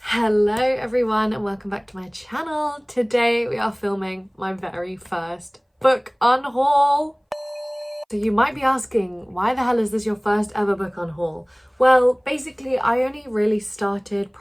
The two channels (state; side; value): identical; both; correlation 1.00